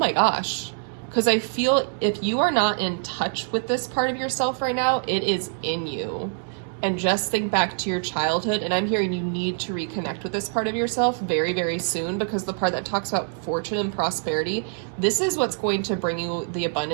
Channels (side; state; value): left; silent; digital silence